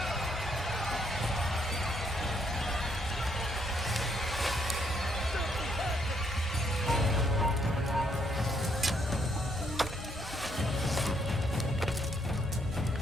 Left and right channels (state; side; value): normal; both; correlation 0.72